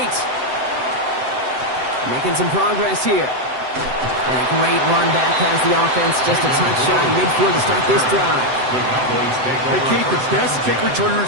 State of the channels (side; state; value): left; late; 7.8 ms